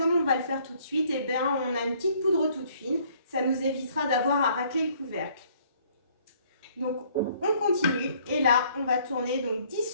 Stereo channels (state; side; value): inverted; both; correlation -0.61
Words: on va le faire tout de suite, eh bien on a une petite poudre toute fine. Ça nous évitera d'avoir à racler le couvercle. Donc on continue et là on va tourner donc 10